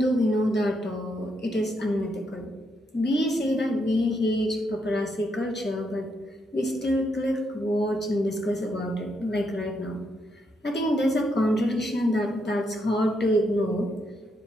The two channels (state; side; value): normal; both; correlation 0.78